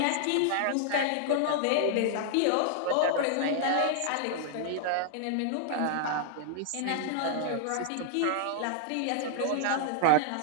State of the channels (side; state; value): both; different; correlation -0.01